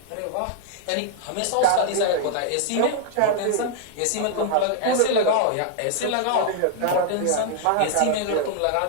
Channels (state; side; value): different; both; correlation -0.01